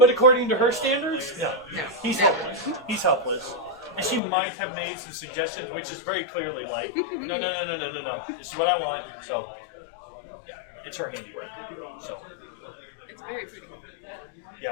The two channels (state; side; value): drops out; right; at 4.2 s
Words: according to her standards, no. No. He's No. helpless. He's helpless. And she might have made some suggestions, which is very clearly like, no. This is what I want. So, it's her handiwork. So, It's very pretty.